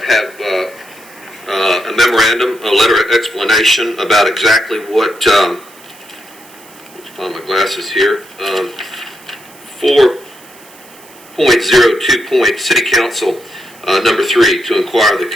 have a memorandum, a letter of explanation about exactly what, let's find my glasses here, 4.02 City Council, number 3, to inquire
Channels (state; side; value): noise; right; hiss, 23 dB below the sound